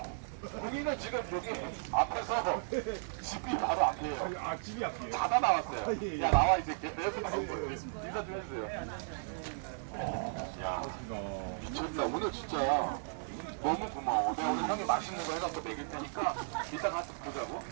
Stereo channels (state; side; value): silent; left; 54 dB below the other